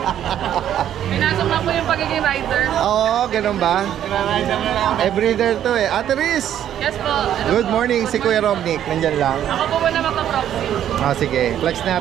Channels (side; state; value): left; quieter; 10.6 dB